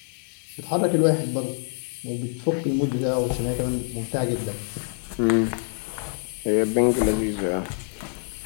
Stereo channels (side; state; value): right; silent; digital silence